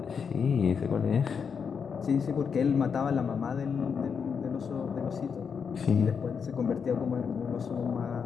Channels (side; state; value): right; quieter; 6.4 dB